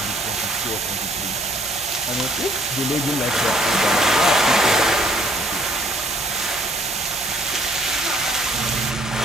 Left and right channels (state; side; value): normal; both; correlation 0.60